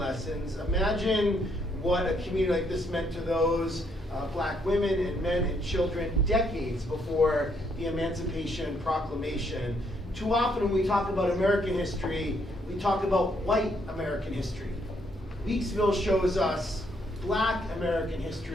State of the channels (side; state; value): both; normal; correlation 0.72